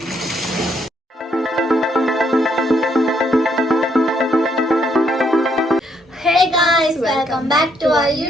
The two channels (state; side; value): normal; both; correlation 0.73